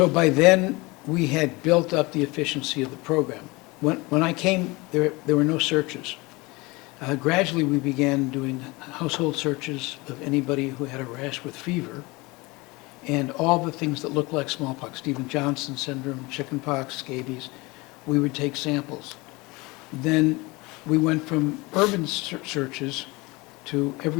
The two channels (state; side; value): quieter; right; 24.1 dB